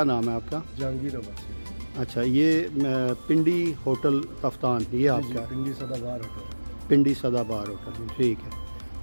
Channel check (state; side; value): inverted; both; correlation -1.00